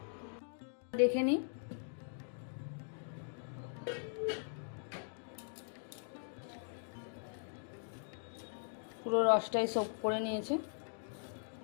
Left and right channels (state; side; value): silent; right; digital silence